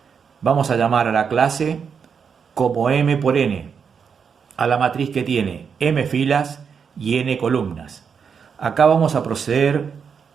vamos a llamar a la clase como M por N, a la matriz que tiene M filas y N columnas. Acá vamos a proceder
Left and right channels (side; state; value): left; quieter; 6.5 dB